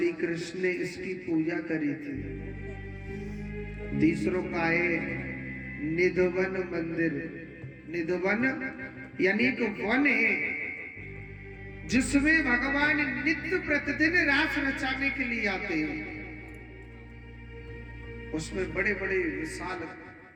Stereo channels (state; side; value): identical; both; correlation 1.00